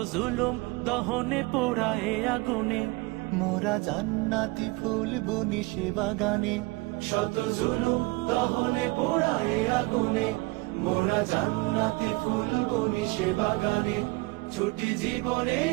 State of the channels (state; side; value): quieter; left; 24.2 dB